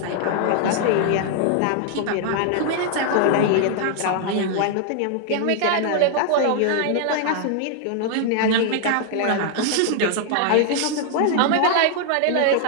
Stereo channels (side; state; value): both; different; correlation 0.00